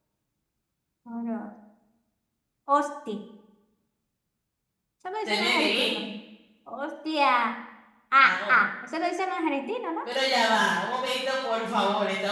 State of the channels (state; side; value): identical; both; correlation 1.00